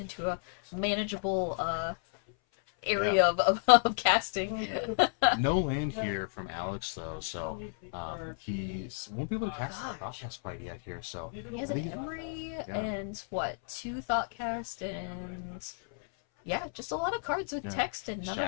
a manageable area of casting. No land here from Alex though, so he won't be able to cast the thought cast quite yet here. So He has an Emery and 2 thought cast and just a lot of cards with text and none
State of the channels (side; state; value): right; silent; 56 dB below the other